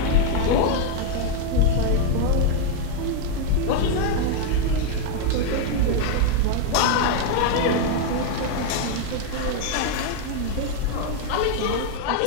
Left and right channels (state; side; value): different; both; correlation 0.00